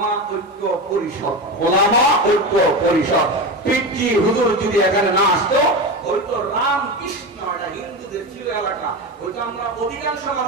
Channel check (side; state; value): both; normal; correlation 0.21